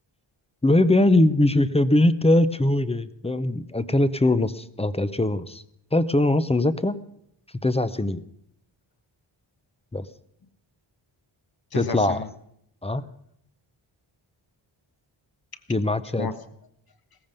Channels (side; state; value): both; normal; correlation 0.79